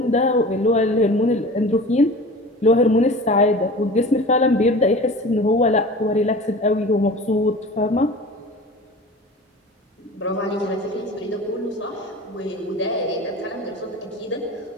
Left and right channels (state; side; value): normal; both; correlation 0.38